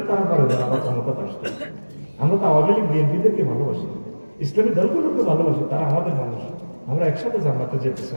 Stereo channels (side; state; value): both; inverted; correlation -1.00